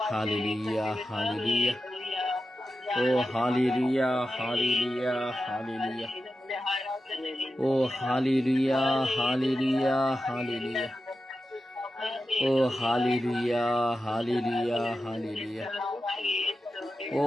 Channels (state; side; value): normal; both; correlation 0.91